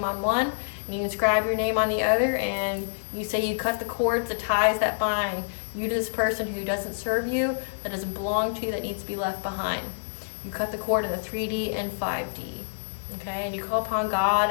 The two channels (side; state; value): right; silent; digital silence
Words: on one, and you inscribe your name on the other, and you say you cut the cords, the ties that bind you to this person who doesn't serve you, that doesn't belong to you, that needs to be left behind. You cut the cord in the 3D and 5D. Okay, and you call upon God